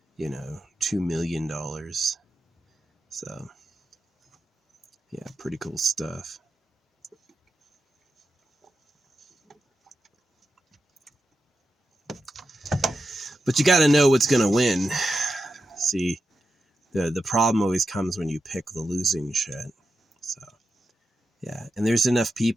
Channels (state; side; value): normal; both; correlation 0.89